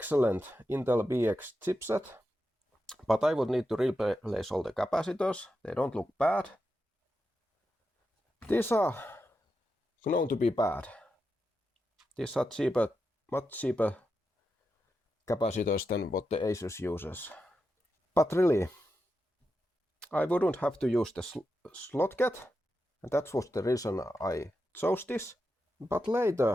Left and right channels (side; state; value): both; normal; correlation 0.88